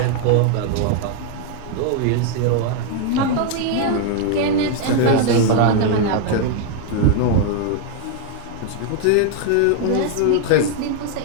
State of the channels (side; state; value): both; different; correlation 0.00